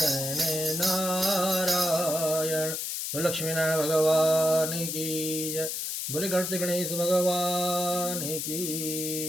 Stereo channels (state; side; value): noise; left; hiss, 3 dB below the sound